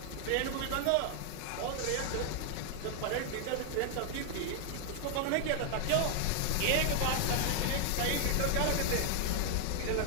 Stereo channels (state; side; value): different; both; correlation 0.00